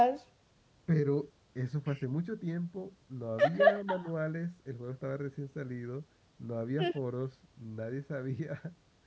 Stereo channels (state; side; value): identical; both; correlation 1.00